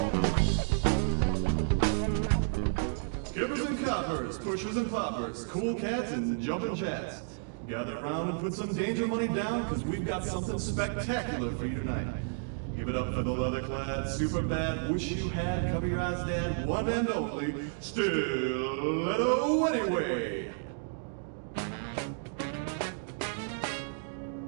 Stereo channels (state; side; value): silent; left; digital silence